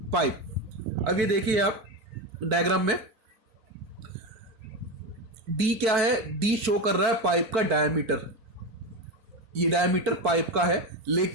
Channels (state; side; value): late; left; 4.5 ms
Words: pipe. अब ये देखिए आप डायग्राम में डी क्या है, डी शो कर रहा है पाइप का डायमीटर, ये डायमीटर पाइप का है,